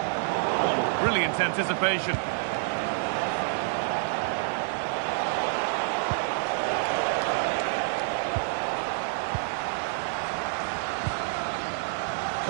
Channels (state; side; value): silent; left; digital silence